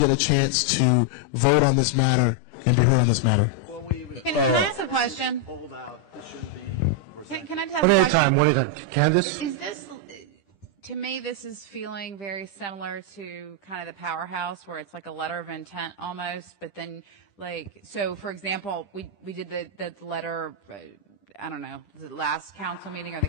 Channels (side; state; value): right; late; 10 ms